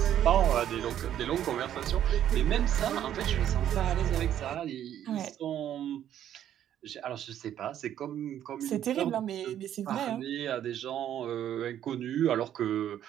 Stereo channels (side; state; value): left; quieter; 10.8 dB